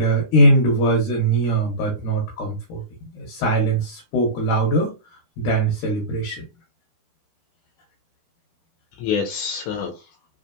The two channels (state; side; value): late; right; 10 ms